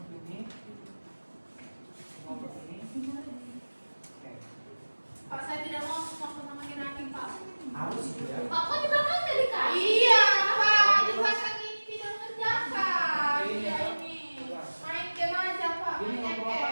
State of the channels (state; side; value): inverted; both; correlation -1.00